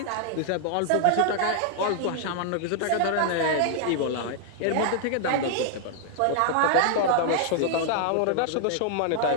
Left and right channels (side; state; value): both; different; correlation -0.01